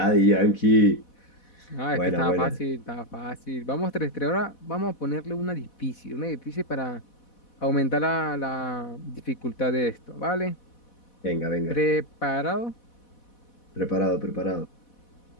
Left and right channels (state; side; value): late; right; 4.1 ms